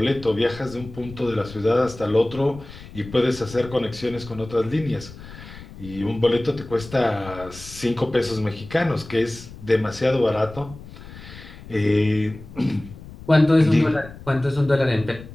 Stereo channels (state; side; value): noise; left; rumble, 16 dB below the sound